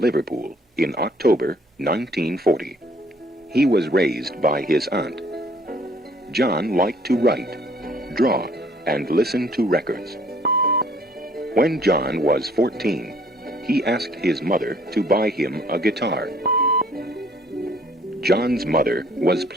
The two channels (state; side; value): normal; both; correlation 0.60